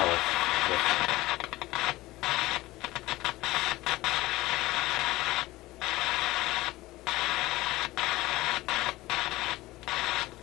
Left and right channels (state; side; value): quieter; right; 18.5 dB